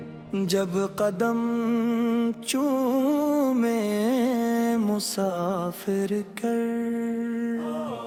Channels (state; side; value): identical; both; correlation 1.00